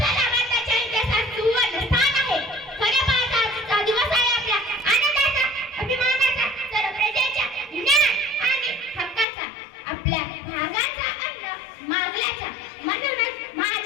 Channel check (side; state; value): right; drops out; at 9.2 s